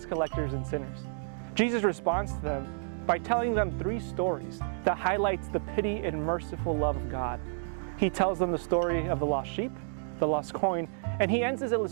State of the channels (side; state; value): left; silent; digital silence